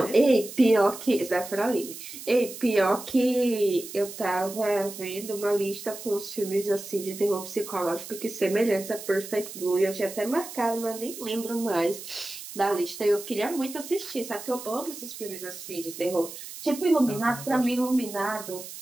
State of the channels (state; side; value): noise; right; hiss, 12 dB below the sound